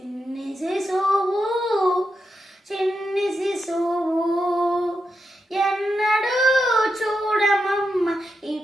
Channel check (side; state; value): both; normal; correlation 0.86